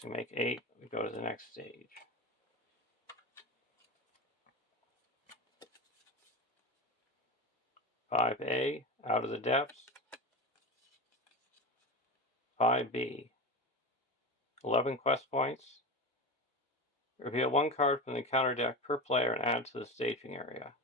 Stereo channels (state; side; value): normal; both; correlation 0.24